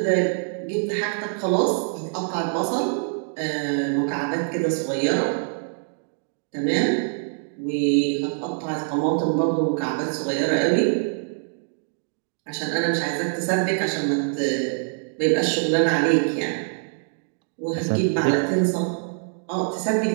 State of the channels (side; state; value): left; silent; digital silence